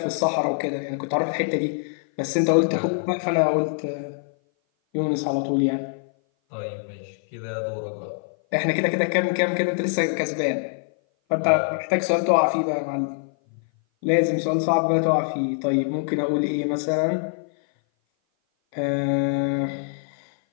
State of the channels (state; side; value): silent; right; 57 dB below the other